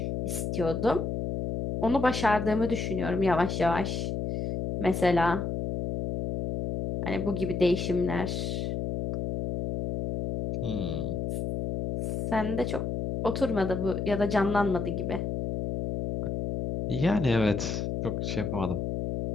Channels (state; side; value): noise; left; hum, 2 dB below the sound